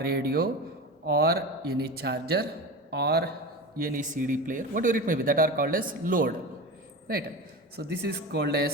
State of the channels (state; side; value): normal; both; correlation 0.28